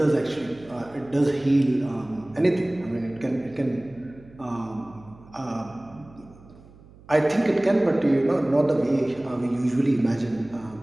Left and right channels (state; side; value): noise; right; hum, 23 dB below the sound